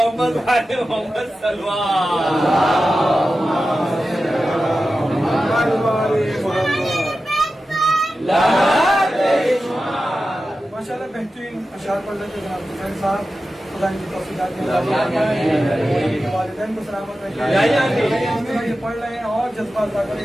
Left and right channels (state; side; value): normal; both; correlation 0.93